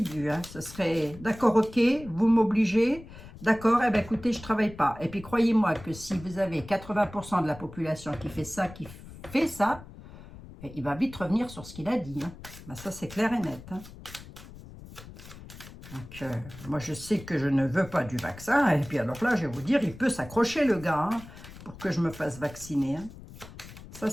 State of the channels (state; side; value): noise; left; rumble, 16 dB below the sound